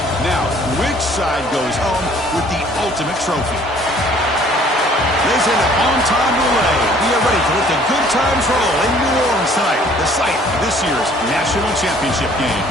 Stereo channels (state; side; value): normal; both; correlation 0.57